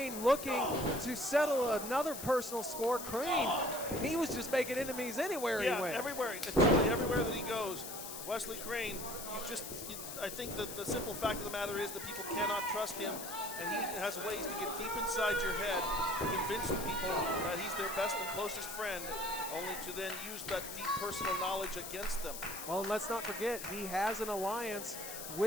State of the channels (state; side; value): noise; left; hiss, 8 dB below the sound